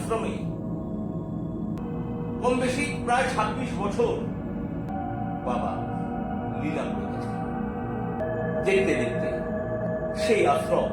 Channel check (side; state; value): both; identical; correlation 1.00